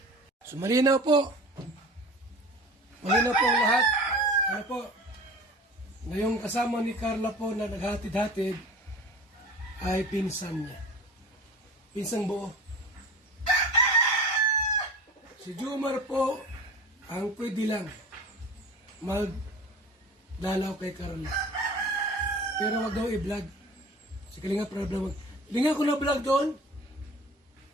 So, malinaw po. Malinaw po ang lahat. Ano po? Ngayong kasama ni Carla po na naghatid-hatid ay pinsan niya. Pinsang buo. Si Jumar po ang pwede lang magdalaw kay Carla. Pero wag daw i-vlog. Si Kalinga Prab na hindi nga ako na-vlog doon.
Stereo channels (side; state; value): both; normal; correlation 0.38